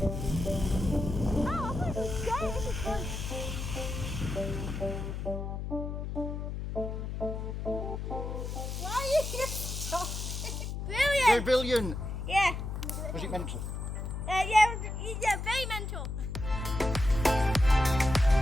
Brilliant! Brilliant! Yeah. Was it mental? Yeah, very mental.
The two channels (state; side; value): noise; left; hum, 5 dB below the sound